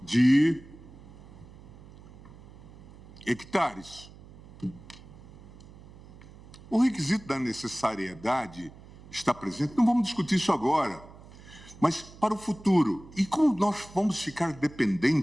de hectares. O requisito da necessariedade está presente, não vamos discutir isso agora, mas para o futuro. E como nós vamos ficar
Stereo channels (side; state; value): right; noise; hum, 20 dB below the sound